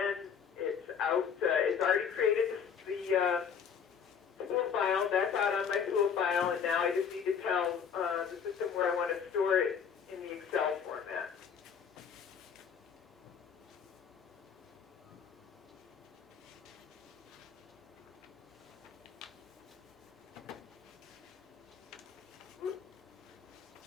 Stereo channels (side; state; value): right; quieter; 7.2 dB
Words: it's out, it's already created the tool file, that's out on my tool file, and now I just need to tell the system where I want to store it in the Excel format.